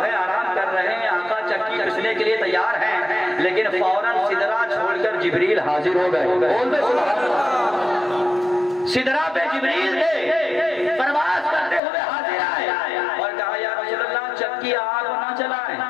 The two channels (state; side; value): drops out; right; at 11.8 s